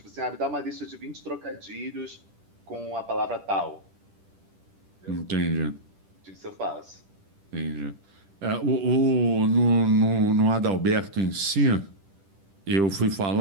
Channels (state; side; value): late; left; 10 ms